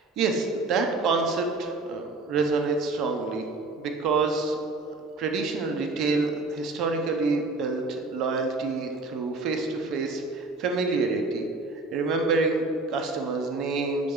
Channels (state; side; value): quieter; left; 3.4 dB